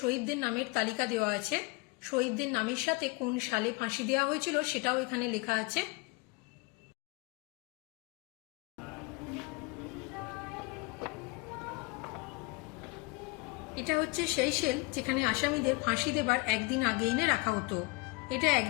নামের তালিকা দেওয়া আছে। শহীদদের নামের সাথে কোন সালে ফাঁসি দেওয়া হয়েছিল সেটাও এখানে লেখা আছে। এটা হচ্ছে সেই সেল যেখানে আসামিদের ফাঁসি দেবার একদিন আগে এনে রাখা হতো। এটা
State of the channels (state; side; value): quieter; right; 26.7 dB